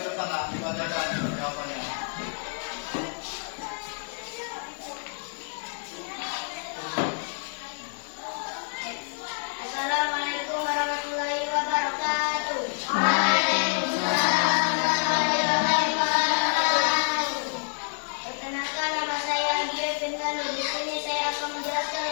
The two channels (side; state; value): right; silent; digital silence